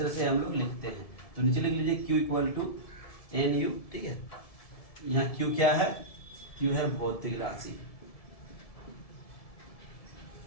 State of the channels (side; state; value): right; late; 1.7 ms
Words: से हम लोग लिखते हैं। तो नीचे लिख लीजिए q equal to N U. ठीक है, यहाँ q क्या है, q है भौतिक राशि,